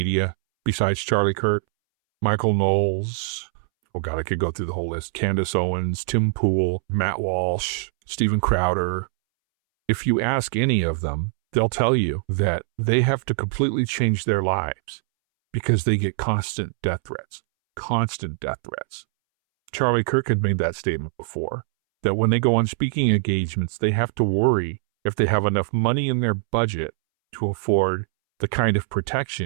besides Charlie Kirk, Michael Knowles, oh God, I could go through the whole list, Candace Owens, Tim Pool, Matt Walsh, Steven Crowder. If you ask any of them, they'll tell you that they have to completely change their lives because they get constant death threats. Constant death threats. Charlie Kirk had made that statement before, that when they go on speaking engagements, they have to worry if they have enough money in their budget to afford the kind of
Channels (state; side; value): silent; left; 63 dB below the other